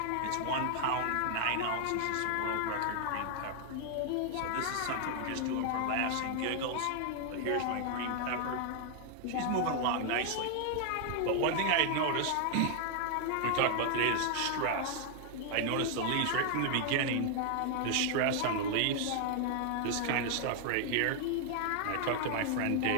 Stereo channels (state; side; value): different; both; correlation 0.00